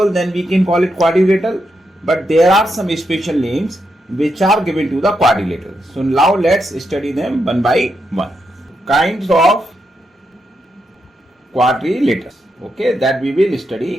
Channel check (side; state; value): both; normal; correlation 0.83